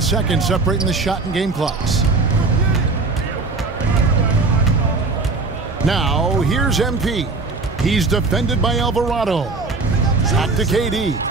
seconds separating the shot and game clocks. Now, here's MP. He's defended by Alvarado. Shot to KD.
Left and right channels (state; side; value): quieter; left; 3.8 dB